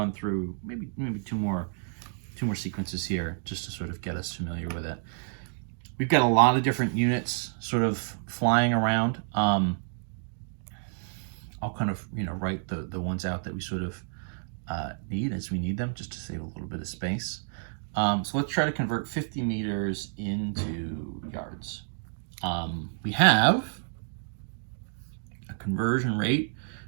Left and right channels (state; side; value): silent; left; digital silence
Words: through maybe two more sequences here just to sort of get us familiar with it. We've got a lot of different units sort of flying around. I'll kind of write the ones out that we sort of need as we need them, just to save a little bit of space. So let's try to convert 50 meters into yards. We have a conversion rate,